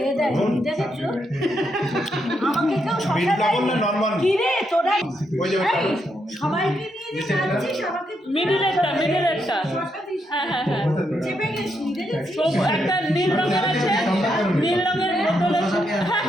দেয়নি দেখেছো আমাকে কেউ বিট শশা লবণ দেয়নি না নরমাল? কি রে তোরা ওই যে ওই এই, চামচ। সবাইকে নিয়ে যে যাচ্ছিস আমাকে মিডিলেরটা। শশা দিস না। হ্যাঁ হ্যাঁ হ্যাঁ। চেপে গেছিস দেখেছিস সব একটা নীল রঙের আছে, নীল রঙের বোতল আছে। হ্যাঁ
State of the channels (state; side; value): normal; both; correlation 0.80